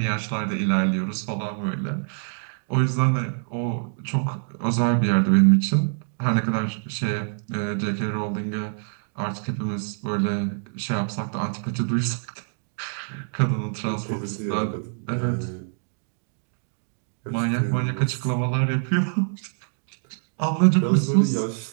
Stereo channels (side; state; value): left; silent; digital silence